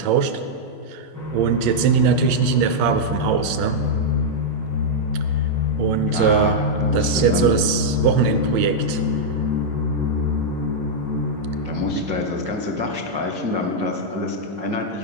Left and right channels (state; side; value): late; left; 9.7 ms